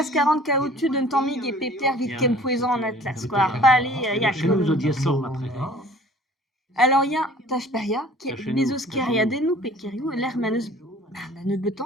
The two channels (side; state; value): both; normal; correlation 0.50